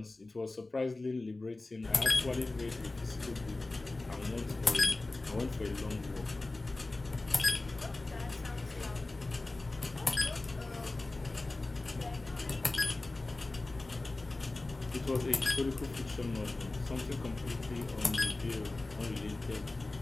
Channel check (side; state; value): right; quieter; 3.1 dB